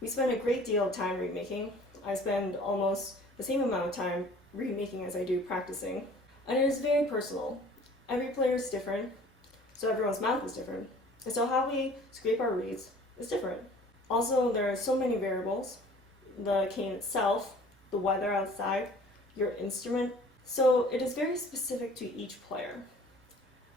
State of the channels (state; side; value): normal; both; correlation 0.50